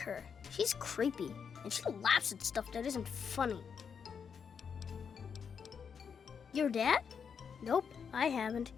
She's creepy, and she laughs at stuff that isn't funny. Your dad? Nope, I haven't.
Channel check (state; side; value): quieter; right; 6.7 dB